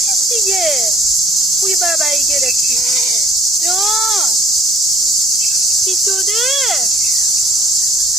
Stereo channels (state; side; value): normal; both; correlation 0.55